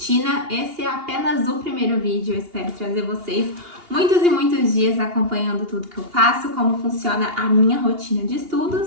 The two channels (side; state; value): left; late; 2.8 ms